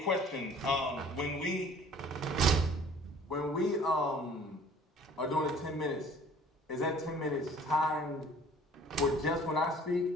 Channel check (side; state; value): both; normal; correlation 0.51